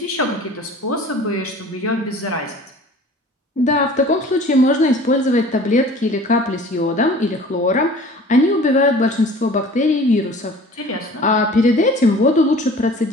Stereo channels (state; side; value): normal; both; correlation 0.46